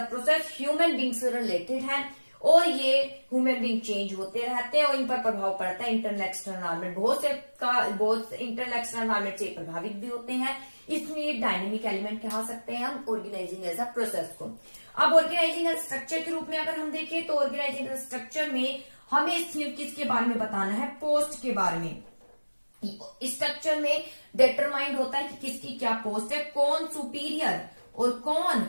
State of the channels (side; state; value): both; inverted; correlation -1.00